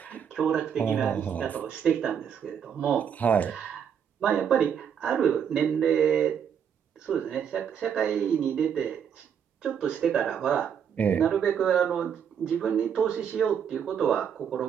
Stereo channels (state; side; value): quieter; left; 8.0 dB